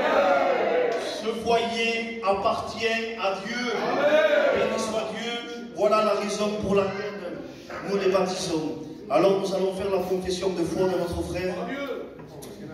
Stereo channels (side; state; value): both; identical; correlation 1.00